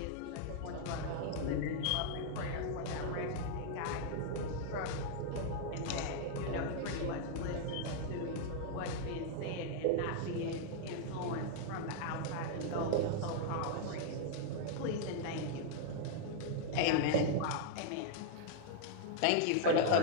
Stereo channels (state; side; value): different; both; correlation 0.00